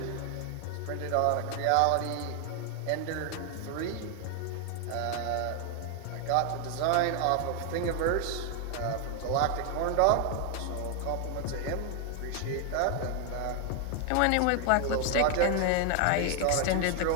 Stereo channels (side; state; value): both; different; correlation 0.00